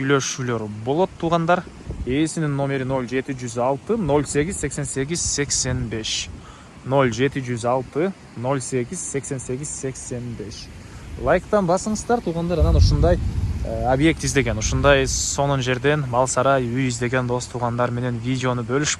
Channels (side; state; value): both; identical; correlation 1.00